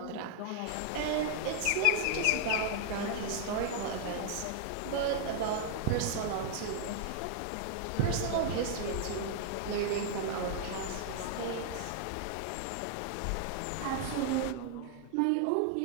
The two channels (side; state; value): both; different; correlation 0.00